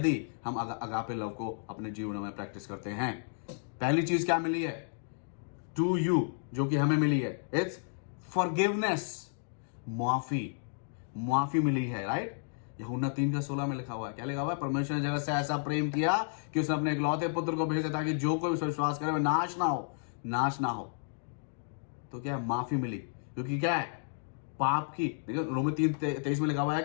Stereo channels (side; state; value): right; silent; digital silence